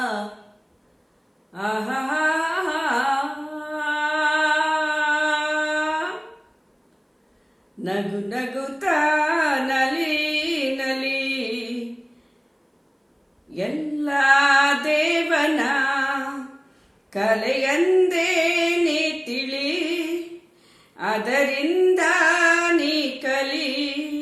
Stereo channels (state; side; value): identical; both; correlation 1.00